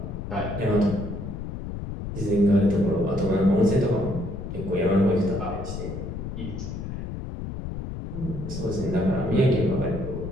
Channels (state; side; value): noise; left; rumble, 7 dB below the sound